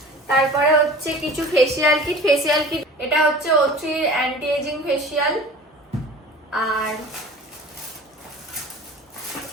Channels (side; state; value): both; normal; correlation 0.41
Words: তারপরে হচ্ছে কিছু ফেসিয়াল কিট। এটা হচ্ছে O3 অ্যান্টি এজিং ফেসিয়াল। আর